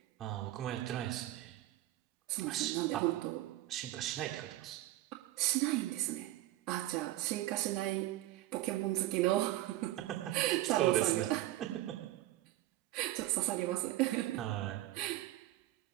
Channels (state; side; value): quieter; left; 15.7 dB